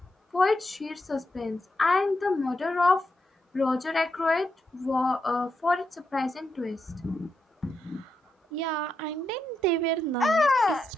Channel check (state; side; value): normal; both; correlation 0.83